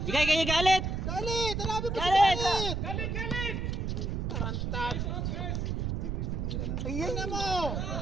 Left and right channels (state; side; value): noise; right; rumble, 1 dB below the sound